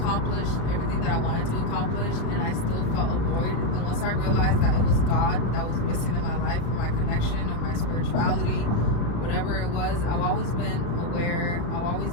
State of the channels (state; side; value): late; right; 34 ms